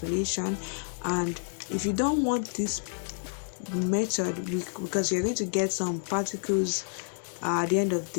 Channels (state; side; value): silent; right; digital silence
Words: And if you don't want this method, because you're going to get some particles at the end of